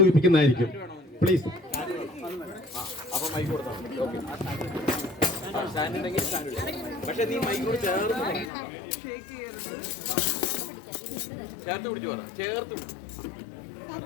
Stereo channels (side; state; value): right; drops out; at 8.5 s